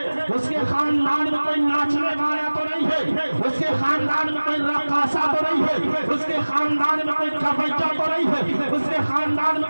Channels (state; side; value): inverted; both; correlation -1.00